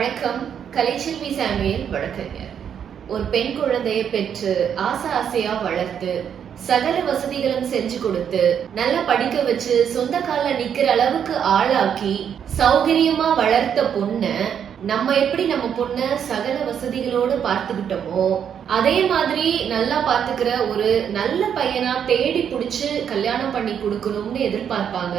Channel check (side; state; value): left; quieter; 8.3 dB